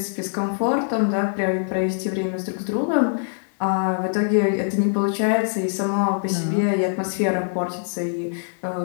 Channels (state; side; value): silent; right; 58 dB below the other